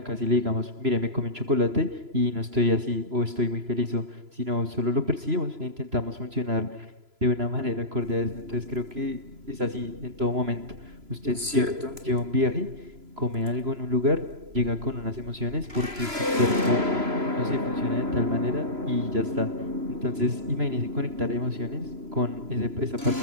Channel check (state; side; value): late; left; 3.0 ms